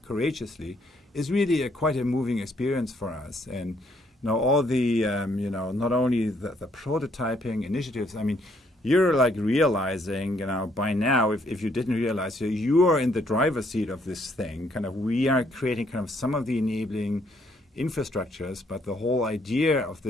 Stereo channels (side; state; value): both; normal; correlation 0.69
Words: courageously, is really quite a moving experience for us. And, you know, all the, you know, not only the prototyping initiatives, I mean, you're like realizing, you know, by now, if you didn't realize, you are in the driver's seat of this thing. Kind of, we are creating kind of some of the enabling infrastructures, but the whole idea of